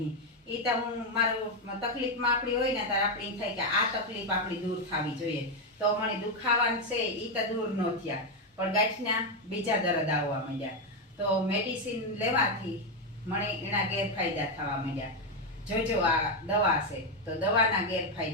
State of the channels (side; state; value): both; normal; correlation 0.05